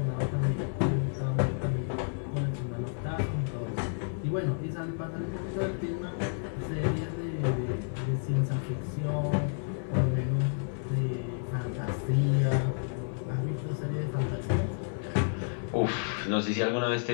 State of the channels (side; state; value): right; silent; 57 dB below the other